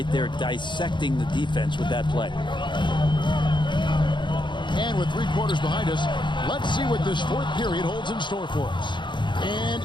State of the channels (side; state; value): right; late; 0.23 ms